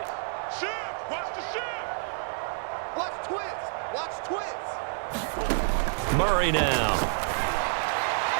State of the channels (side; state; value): left; silent; digital silence